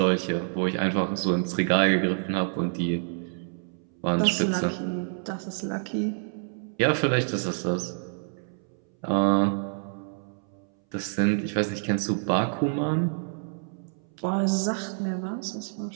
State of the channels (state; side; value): silent; left; 60 dB below the other